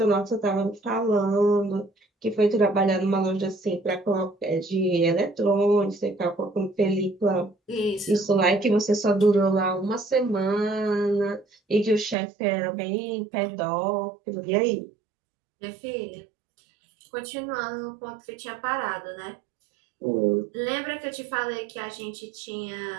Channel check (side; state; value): left; drops out; at 12.2 s